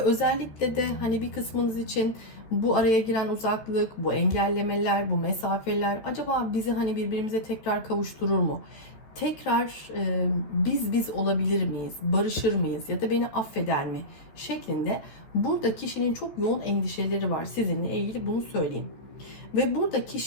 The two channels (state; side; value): late; right; 14 ms